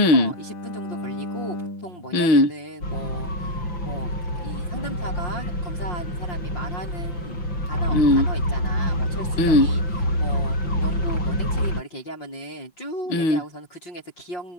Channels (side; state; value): right; late; 5.7 ms